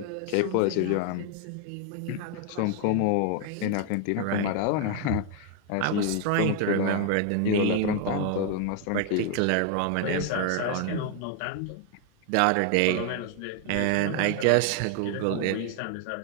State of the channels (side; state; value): both; different; correlation 0.00